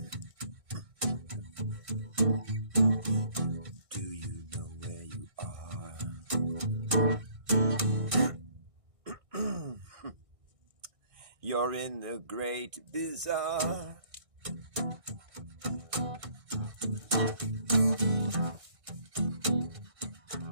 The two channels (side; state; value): left; late; 1.6 ms